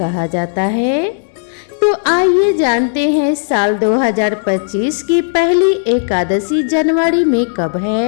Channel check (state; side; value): silent; right; digital silence